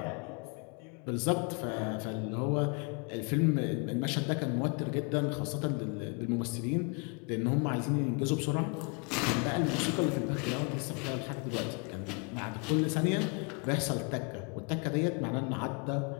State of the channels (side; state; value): right; quieter; 35.5 dB